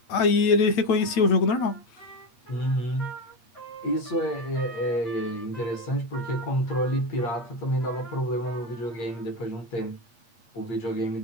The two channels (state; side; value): late; right; 8.5 ms